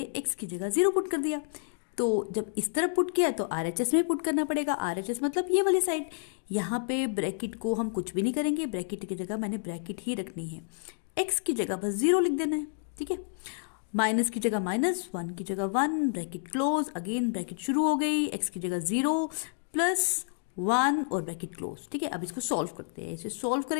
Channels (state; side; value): silent; right; digital silence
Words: x की जगह 0 पुट कर दिया। तो जब इस तरफ पुट किया तो RHS में पुट करना पड़ेगा। RHS मतलब ये वाली साइड। यहाँ पे ब्रैकेट को हम कुछ भी नहीं करेंगे, ब्रैकेट की जगह मैंने ब्रैकेट ही रखनी है। x की जगह बस 0 लिख देना है, ठीक है। माइनस की जगह माइनस, 1 की जगह 1, ब्रैकेट क्लोज, अगेन ब्रैकेट शुरू हो गई, x की जगह 0 प्लस 1 और ब्रैकेट क्लोज, ठीक है। अब इसको सॉल्व करते हैं। इसे सॉल्व